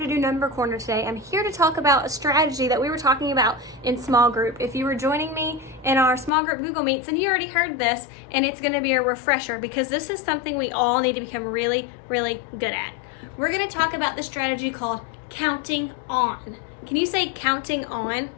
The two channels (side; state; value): right; drops out; at 6.3 s